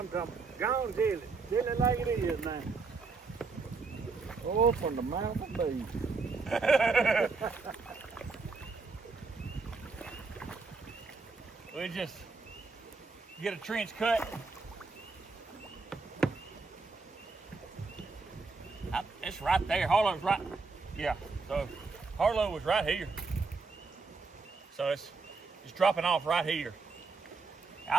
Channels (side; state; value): left; quieter; 4.3 dB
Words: talking about. Gone dilly. Dilly like it is now. Oh, from the mouth of beaver. We just get a trench cut. It's right there. Harlo's right. Yeah. So Harlo was right here. So it's dropping off right here.